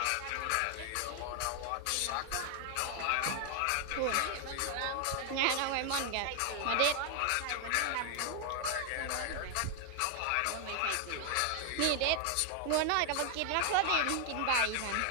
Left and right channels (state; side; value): different; both; correlation 0.00